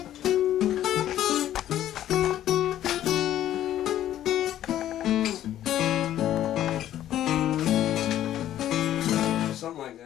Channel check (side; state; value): right; quieter; 12.1 dB